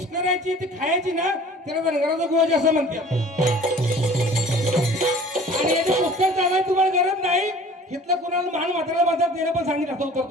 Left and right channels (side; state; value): both; normal; correlation 0.47